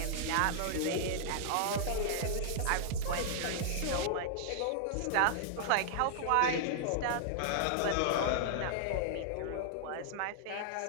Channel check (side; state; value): both; different; correlation -0.01